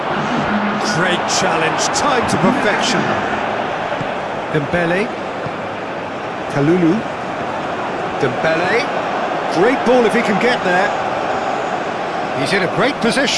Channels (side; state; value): both; identical; correlation 1.00